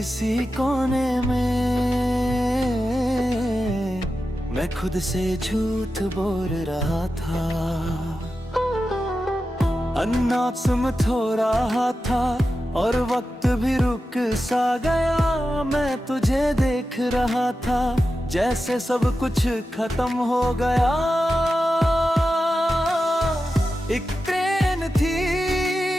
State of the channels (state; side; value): normal; both; correlation 0.91